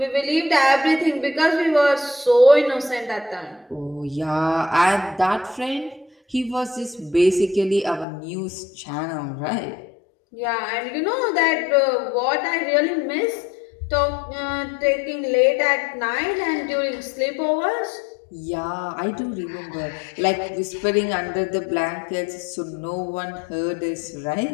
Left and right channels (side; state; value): right; drops out; at 8.1 s